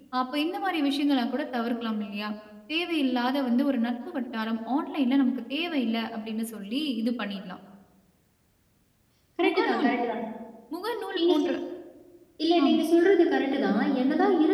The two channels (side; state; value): both; identical; correlation 1.00